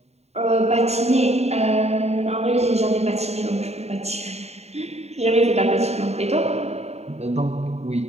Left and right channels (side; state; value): left; late; 0.31 ms